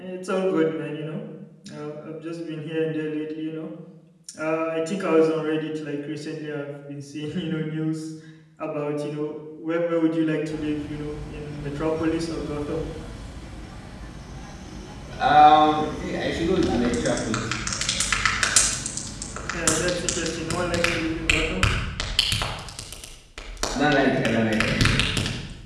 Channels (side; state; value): both; identical; correlation 1.00